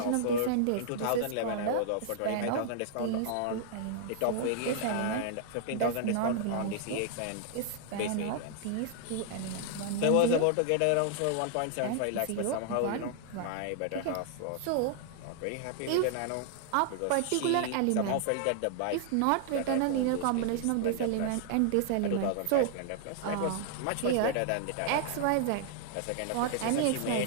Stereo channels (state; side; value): different; both; correlation -0.01